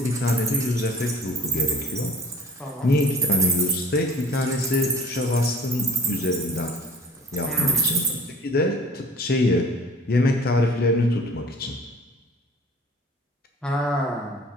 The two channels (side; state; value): both; normal; correlation 0.49